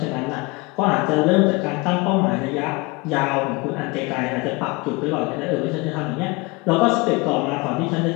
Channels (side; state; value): right; quieter; 25.4 dB